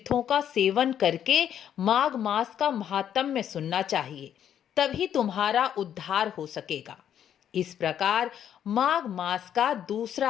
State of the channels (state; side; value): quieter; right; 9.6 dB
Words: का सेवन करके माघ मास का महात्म्य सुनना चाहिए, तभी तुम्हारा उद्धार हो सकेगा। इस प्रकार माघ मास का